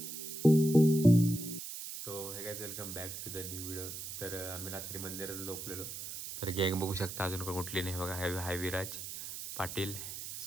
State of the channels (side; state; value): right; noise; hiss, 8 dB below the sound